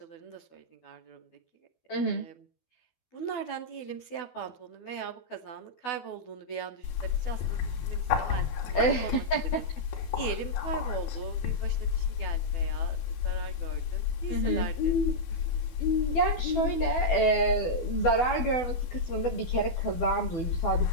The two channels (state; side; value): late; right; 12 ms